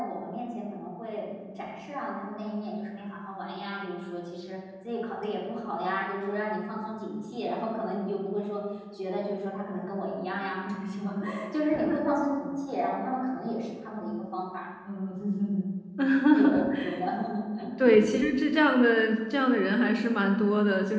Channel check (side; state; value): both; identical; correlation 1.00